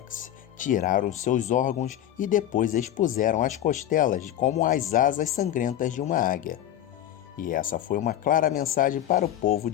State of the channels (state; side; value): quieter; right; 11.9 dB